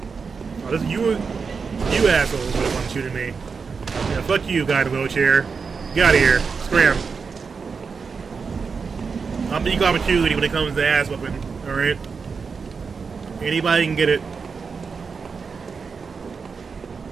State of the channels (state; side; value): quieter; left; 5.3 dB